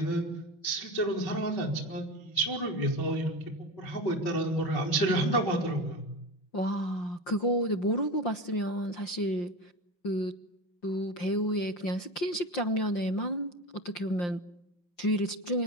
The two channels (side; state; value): right; late; 5.7 ms